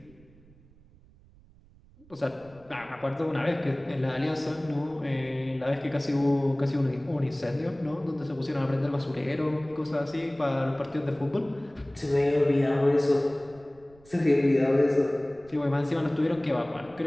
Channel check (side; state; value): right; noise; rumble, 26 dB below the sound